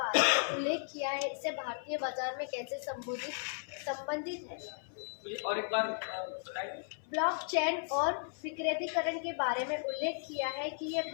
में उल्लेख किया है, इससे भारतीय बाजार में कैसे संबंधित है? मुझे और एक बार बताइए। ब्लॉकचेन और विकेंद्रीकरण के बारे में उल्लेख किया है कि ये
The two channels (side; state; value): right; silent; 54 dB below the other